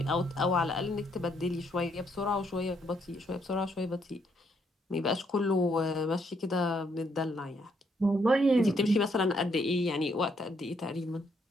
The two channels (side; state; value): both; normal; correlation 0.73